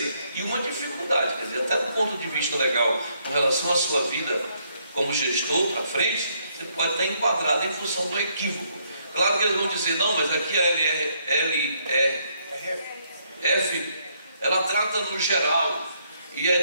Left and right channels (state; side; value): inverted; both; correlation -0.72